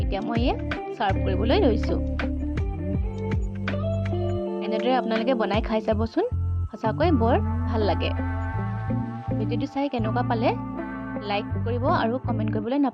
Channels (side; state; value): both; identical; correlation 1.00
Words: এতিয়া মই এয়া ছাৰ্ভ কৰিবলৈ লৈছোঁ। এনেদৰে আপোনালোকে বনাই খাই চাবচোন, সঁচাকৈ বৰ ভাল লাগে। ভিডিঅ'টো চাই কেনেকুৱা পালে লাইক কৰিব আৰু কমেণ্ট কৰিবলৈ